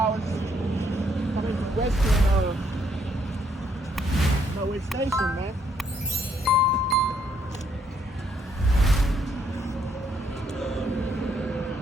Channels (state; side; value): normal; both; correlation 0.71